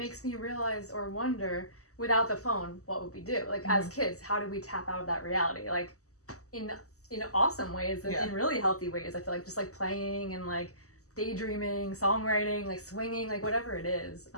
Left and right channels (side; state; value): right; late; 0.66 ms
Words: me realize or wonder, without the phone, what would we do? Like as kids, how do we tap out of that reality? Like in awesome ways and in really healthy ways. I feel like just like playing and like daydreaming, songwriting, like swinging, like whatever it is.